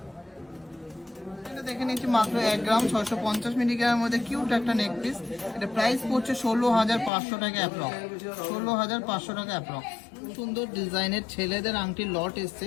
দেখে নিচ্ছি মাত্র 1 গ্রাম 650 মিলিগ্রামের মধ্যে কিউট একটা নেক পিস। এটা প্রাইস পড়ছে 16,500 টাকা অ্যাপ্রক্স, 16,500 টাকা অ্যাপ্রক্স। সুন্দর ডিজাইনের ছেলেদের আংটির লট এসছে,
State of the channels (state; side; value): drops out; right; at 7.1 s